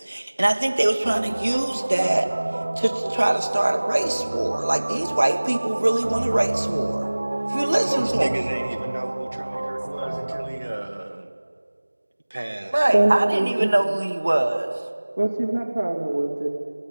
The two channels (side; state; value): both; inverted; correlation -1.00